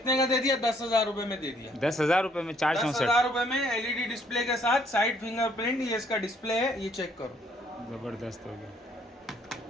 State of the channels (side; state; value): both; normal; correlation 0.66